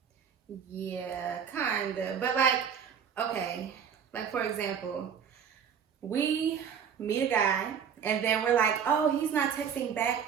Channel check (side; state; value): left; quieter; 7.6 dB